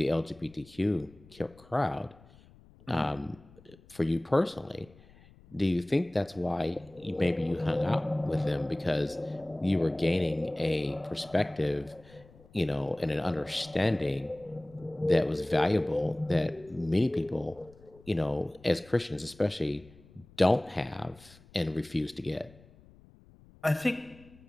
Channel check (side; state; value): left; noise; rumble, 25 dB below the sound